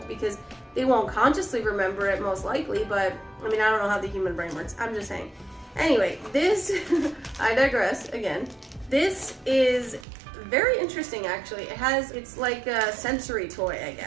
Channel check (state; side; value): drops out; left; at 10.1 s